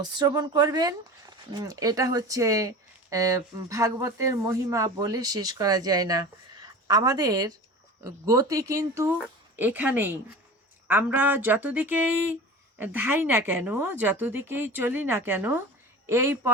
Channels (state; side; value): normal; both; correlation 0.35